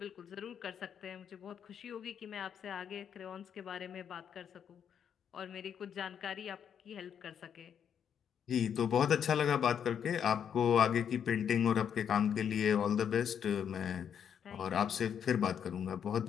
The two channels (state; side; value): quieter; right; 8.2 dB